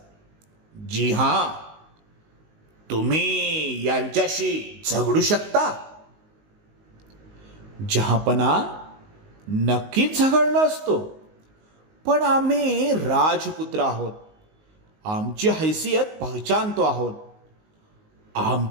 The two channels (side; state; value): left; late; 19 ms